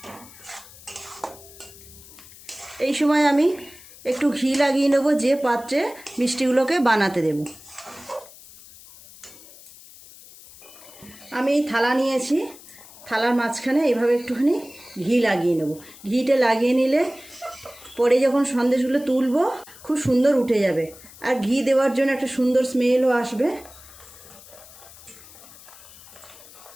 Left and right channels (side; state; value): left; noise; hiss, 20 dB below the sound